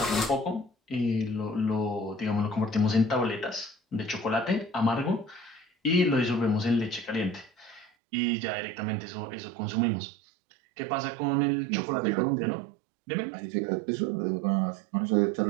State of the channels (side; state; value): left; drops out; at 7.9 s